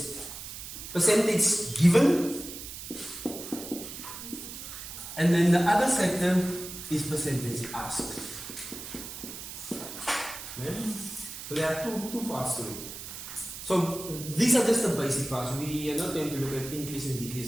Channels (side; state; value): right; noise; hiss, 10 dB below the sound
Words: Percentage given, and then the other sector is percentage asked. Yeah? So there are two parts to it. So these are just the basic parts. We are not going to look at increase and